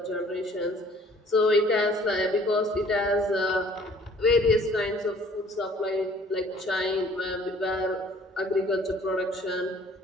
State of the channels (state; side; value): normal; both; correlation 0.55